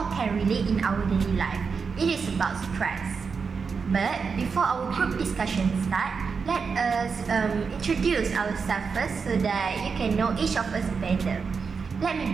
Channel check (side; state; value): left; quieter; 5.4 dB